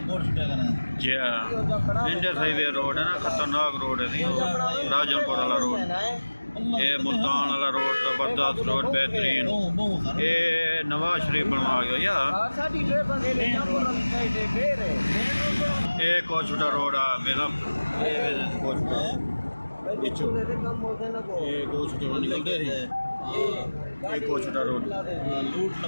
इंडियन हाईवे रोड है ना खतरनाक रोड है राजनपुर वाला रोड ये मुल्तान वाला रोड जबरदस्त रोड बेहतरीन ये नवाज शरीफ बनवा गया यार एक और छोटा रोड है मेरा ये दो छोटे निकलते थे एक और छोटा रोड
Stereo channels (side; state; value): both; inverted; correlation -1.00